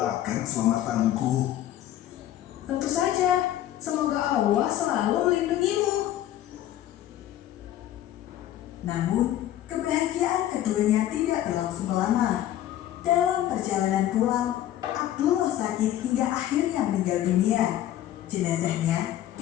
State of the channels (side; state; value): right; quieter; 12.6 dB